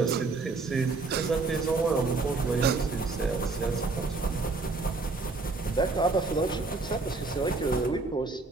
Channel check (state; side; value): quieter; left; 3.8 dB